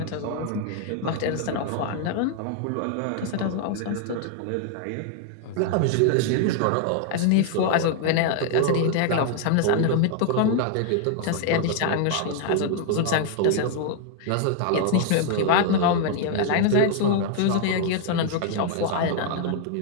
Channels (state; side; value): different; both; correlation 0.00